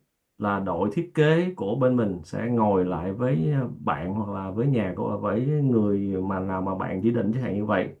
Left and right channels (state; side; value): identical; both; correlation 1.00